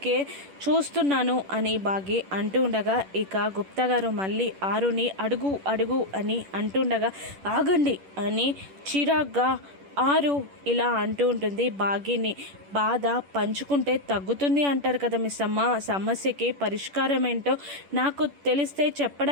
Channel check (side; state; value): left; late; 10 ms